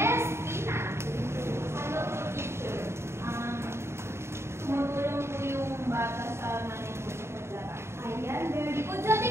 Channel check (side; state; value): left; late; 0.13 ms